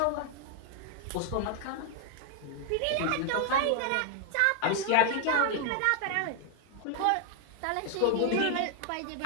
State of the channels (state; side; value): different; both; correlation 0.00